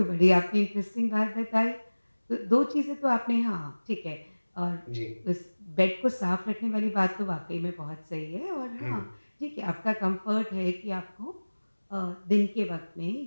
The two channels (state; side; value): inverted; both; correlation -1.00